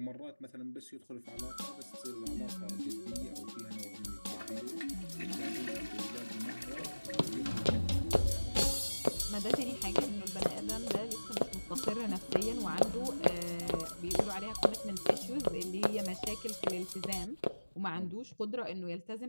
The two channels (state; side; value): inverted; both; correlation -1.00